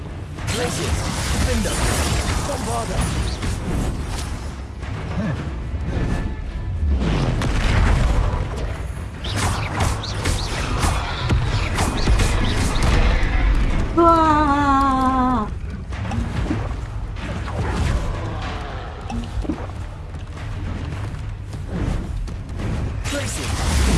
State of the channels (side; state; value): both; identical; correlation 1.00